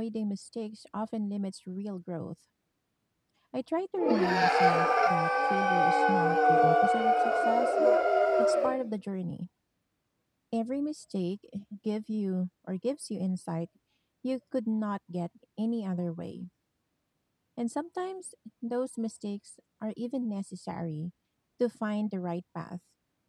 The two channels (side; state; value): both; identical; correlation 1.00